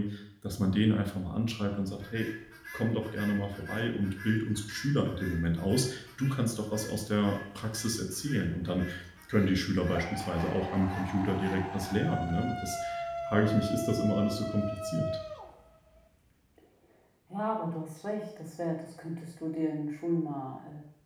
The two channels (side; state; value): both; identical; correlation 1.00